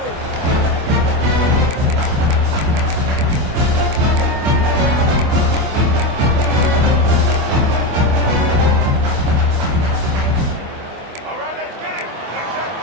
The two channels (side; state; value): left; late; 24 ms